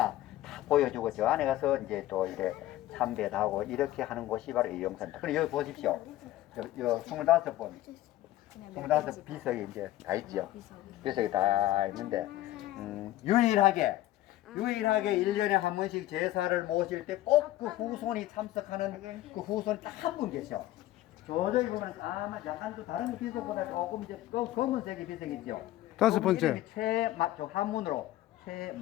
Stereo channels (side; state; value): right; quieter; 15.1 dB